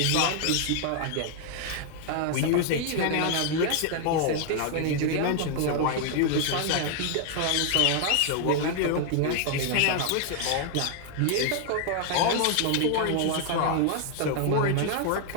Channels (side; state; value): both; different; correlation 0.00